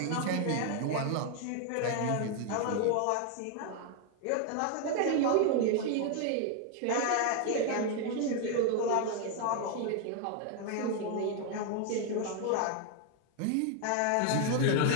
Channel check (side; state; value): both; different; correlation 0.01